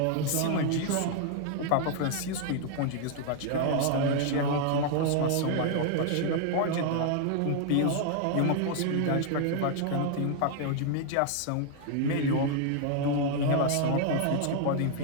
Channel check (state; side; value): different; both; correlation 0.00